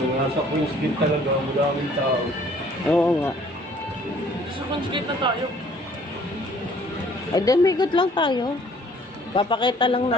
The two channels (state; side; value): normal; both; correlation 0.57